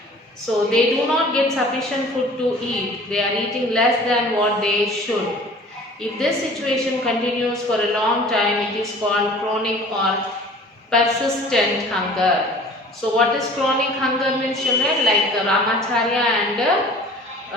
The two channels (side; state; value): both; normal; correlation 0.47